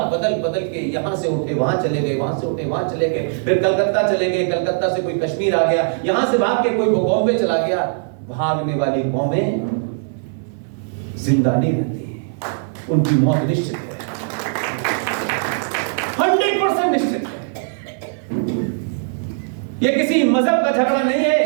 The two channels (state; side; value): silent; left; 61 dB below the other